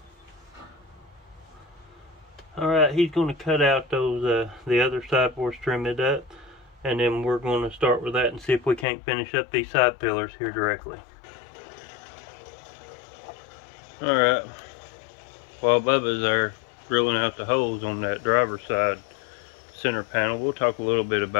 Alright, he's going to cut out those the other side for us, trim it up, and then we're going to start with that and see if we can't finish up these side pillars here directly. Alright, while Bubba's there drilling out the holes on that driver's side center panel, we'll talk a little bit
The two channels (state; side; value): drops out; right; at 8.8 s